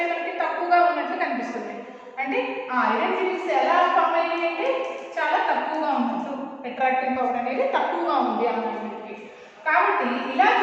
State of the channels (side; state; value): both; identical; correlation 1.00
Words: మనకి, తక్కువగా ఉన్నట్లు కనిపిస్తుంది. అంటే ఆ ఐరన్ ఫిలింగ్స్ ఎలా ఫామ్ అయ్యాయి అంటే చాలా తక్కువగా ఉన్నట్టు, అట్రాక్టింగ్ పవర్ అనేది తక్కువగా ఉంది ఆ మ్యాగ్నెట్కి. కాబట్టి ఇలా